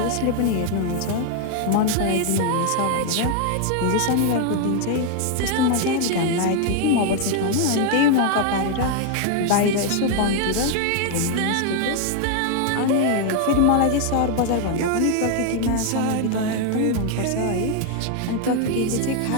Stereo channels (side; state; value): both; different; correlation 0.00